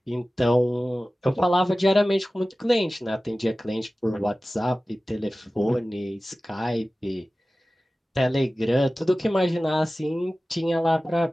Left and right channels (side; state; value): both; normal; correlation 0.96